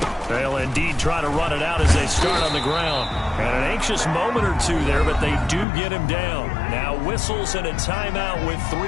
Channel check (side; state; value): right; drops out; at 5.7 s